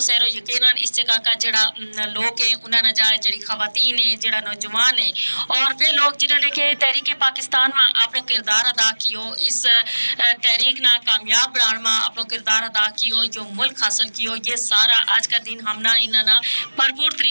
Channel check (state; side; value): inverted; both; correlation -1.00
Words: यकीनन इस जगह का जड़ा लोग है उन्होंने जाए जड़ी खवातीन है जड़ा नौजवान है और वे लोग जिन्होंने के तहरीक पाकिस्तान में अपना किरदार अदा कियो, इस तहरीक ना कामयाब बनाने में अपना किरदार अदा कियो, जो मुल्क हासिल कियो, ये सारा आज का दिन हमना इन्होंने भरपूर